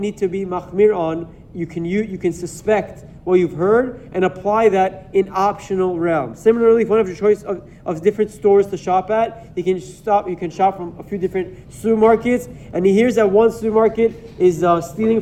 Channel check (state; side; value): identical; both; correlation 1.00